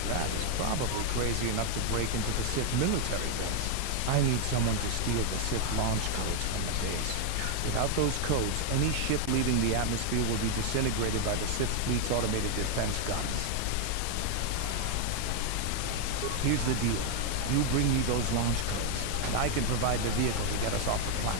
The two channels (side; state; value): both; different; correlation 0.00